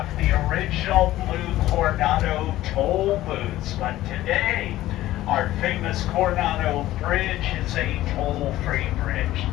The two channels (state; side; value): quieter; right; 15.2 dB